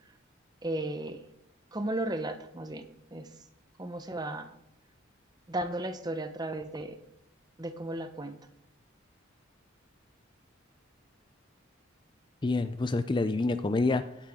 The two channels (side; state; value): both; normal; correlation 0.70